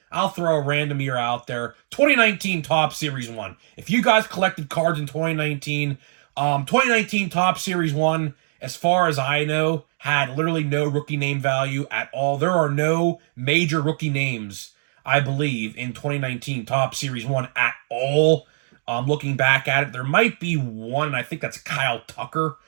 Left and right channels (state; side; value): silent; left; digital silence